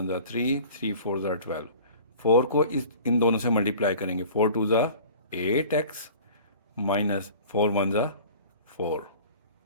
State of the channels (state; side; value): inverted; both; correlation -0.44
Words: ज़ा 3, 3 4 ज़ा 12। 4 को इन दोनों से मल्टीप्लाई करेंगे। 4 2 ज़ा 8x माइनस 4 1 ज़ा 4।